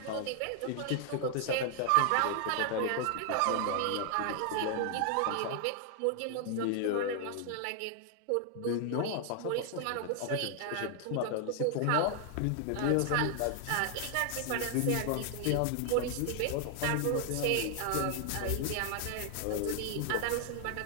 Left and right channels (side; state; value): both; different; correlation 0.00